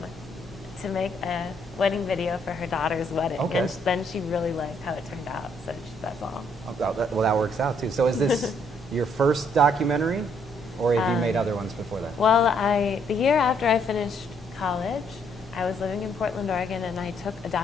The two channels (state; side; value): normal; both; correlation 0.69